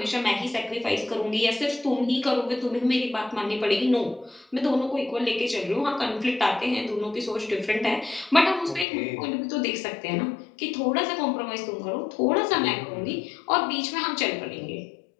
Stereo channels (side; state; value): right; drops out; at 8.8 s